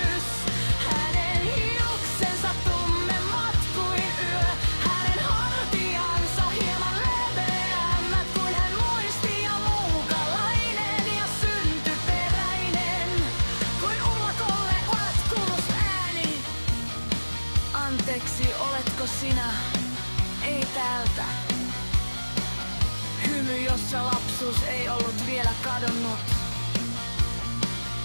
Hänen hiuksensa tummemmat kuin yö, hänen hartiansa hieman leveämmät kuin hän muisti, ja muukalainen ja syntyperäinen kuin ullakolle olet kuullut ääni. Anteeksi, oletko sinä? Ei täältä. Hymy, jossa lapsuus ei ollut vielä kadonnut.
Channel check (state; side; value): inverted; both; correlation -1.00